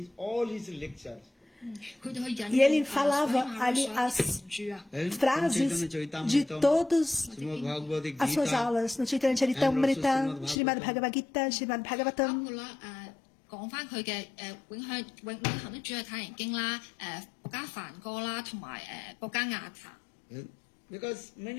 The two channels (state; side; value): drops out; right; at 10.6 s